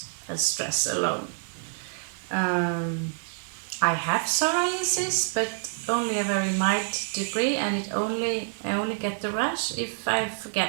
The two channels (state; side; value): silent; left; digital silence